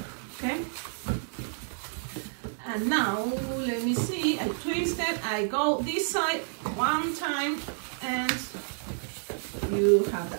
okay, and now let me see, I twist it, I go this side 1 time, and you have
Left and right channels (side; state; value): left; silent; digital silence